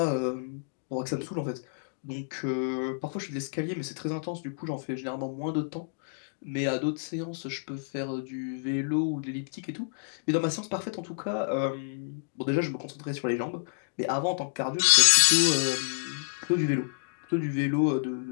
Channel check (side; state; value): right; silent; digital silence